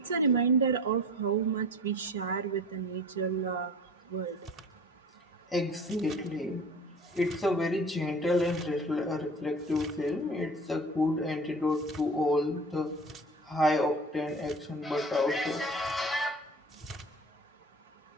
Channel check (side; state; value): both; normal; correlation 0.40